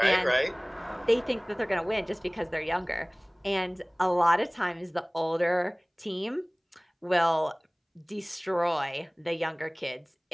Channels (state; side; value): identical; both; correlation 1.00